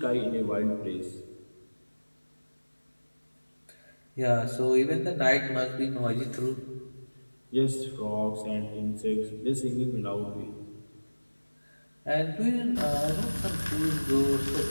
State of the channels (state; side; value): inverted; both; correlation -1.00